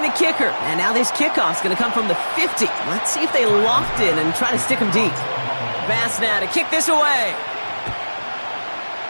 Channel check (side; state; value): both; inverted; correlation -1.00